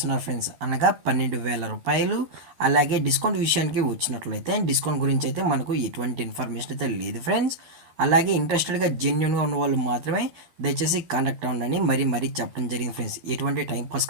ఫ్రెండ్స్, అనగా 12,000 రూపాయలు. అలాగే డిస్కౌంట్ విషయానికి వచ్చినట్లయితే డిస్కౌంట్ గురించి అయితే మనకు ఎటువంటి ఇన్ఫర్మేషన్ అయితే లేదు ఫ్రెండ్స్. అలాగే ఇంట్రెస్టెడ్గా జెన్యున్గా ఉన్న వాళ్ళు మాత్రమే దయచేసి కాంటాక్ట్ అవ్వండి మరీ చెప్పడం జరిగింది ఫ్రెండ్స్. ఎటువంటి టైంపాస్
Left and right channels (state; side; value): late; left; 13 ms